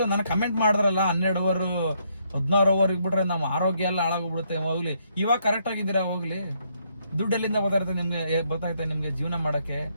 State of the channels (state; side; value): inverted; both; correlation -0.73